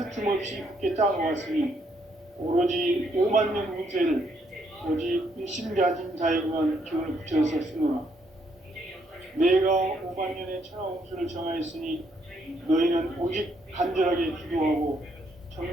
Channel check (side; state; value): both; normal; correlation 0.72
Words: 없이 굳게 짜놓았으니 오로지 5만 년 운세를 오직 일심가진 자에게만 기운을 붙여서 쓰노라. 내가 5만 년의 천하 운수를 정하였으니 너희는 오직 간절하게 기도하고